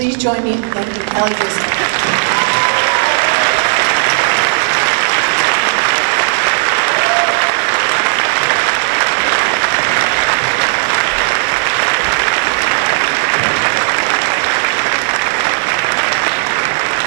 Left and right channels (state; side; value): silent; left; digital silence